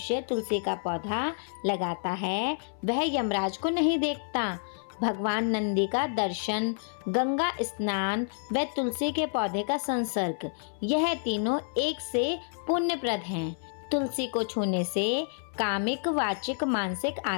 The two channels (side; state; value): right; silent; 57 dB below the other